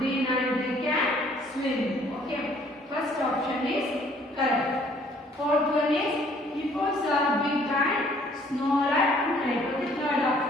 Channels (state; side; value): normal; both; correlation 0.60